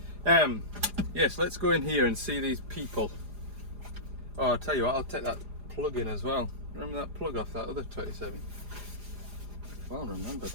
Yes, let's go in here and see these people. Oh, I'll tell you what, I'll take that plug in as well. Remember that plug off that other 27? Well, remember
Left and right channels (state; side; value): late; left; 4.9 ms